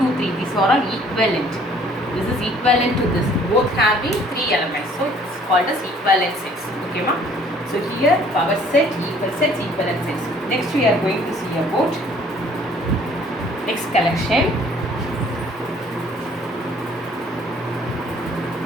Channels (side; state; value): both; normal; correlation 0.58